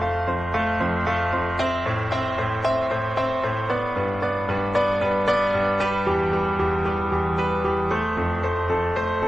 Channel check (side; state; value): both; normal; correlation 0.94